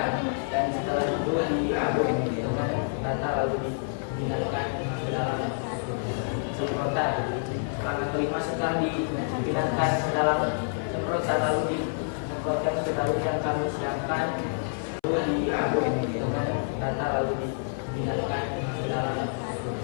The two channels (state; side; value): silent; right; 59 dB below the other